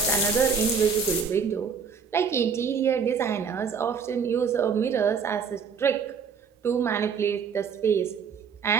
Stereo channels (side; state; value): left; quieter; 6.2 dB